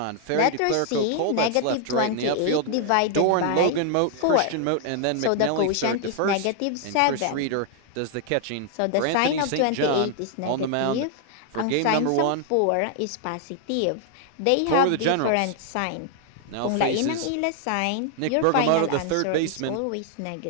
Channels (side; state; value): both; different; correlation 0.00